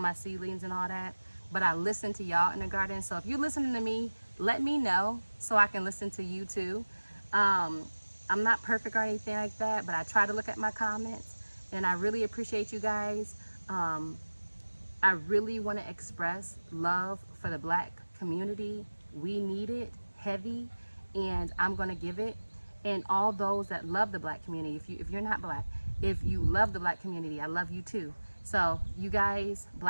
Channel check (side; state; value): both; inverted; correlation -1.00